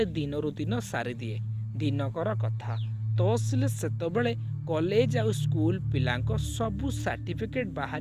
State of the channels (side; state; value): right; noise; rumble, 28 dB below the sound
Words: दिनरु दिन सारी दिए। दिनकर कथा तहसील सेतबेले कॉलेज आउ स्कूल पिलांको सबु सर्टिफिकेट